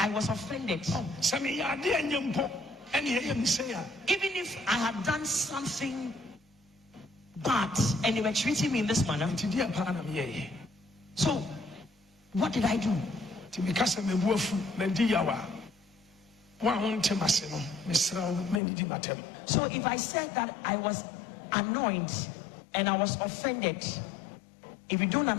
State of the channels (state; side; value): drops out; right; at 18.6 s